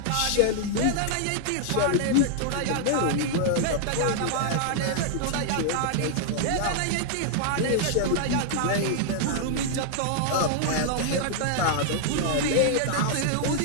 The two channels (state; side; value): different; both; correlation -0.01